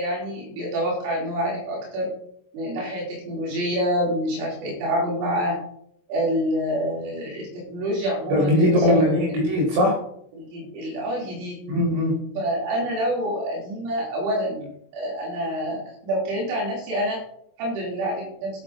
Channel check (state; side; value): late; left; 22 ms